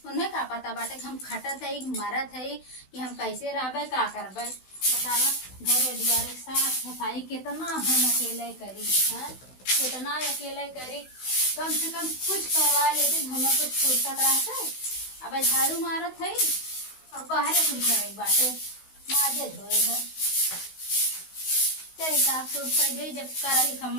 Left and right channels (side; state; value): right; late; 16 ms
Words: उन्हें का पता बाटे हम खटत है मरत है कि हम कैसे रहबे का करबे। बतावा घरे दुआरे साफ सफाई कितना हम अकेले करी है, कितना अकेले करी। कम से कम कुछ करवा लेते हमें कुछ फुर्सत रहते। अब झाड़ू मारत है और बाहर कुछ करे बाटे माजे धोए है। चल साफ सूफ कर दे जब करही